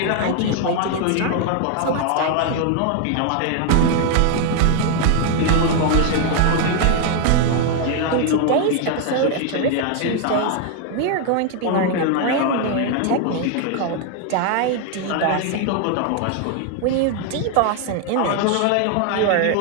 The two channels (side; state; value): both; different; correlation 0.00